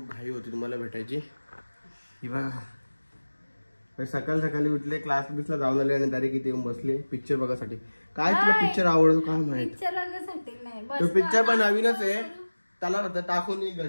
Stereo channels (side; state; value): both; inverted; correlation -1.00